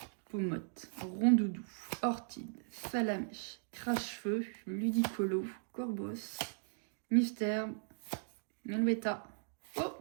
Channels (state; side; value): silent; left; digital silence